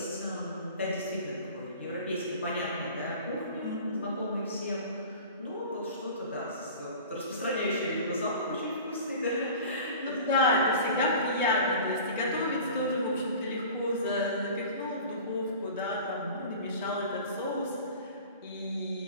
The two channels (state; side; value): inverted; both; correlation -0.40